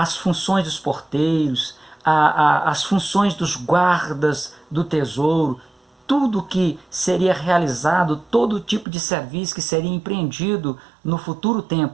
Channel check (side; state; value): left; drops out; at 8.8 s